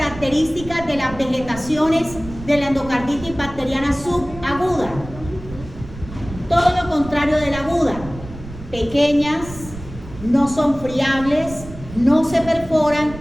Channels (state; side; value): noise; right; rumble, 14 dB below the sound